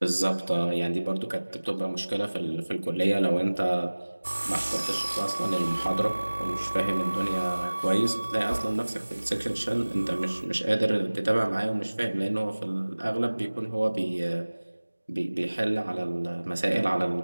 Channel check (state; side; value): inverted; both; correlation -1.00